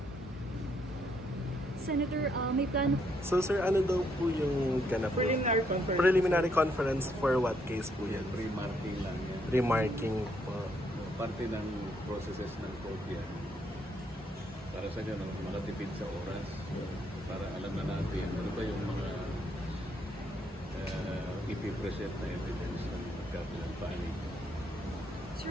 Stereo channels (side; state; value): both; normal; correlation 0.73